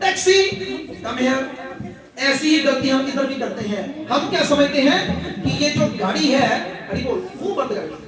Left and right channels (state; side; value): identical; both; correlation 1.00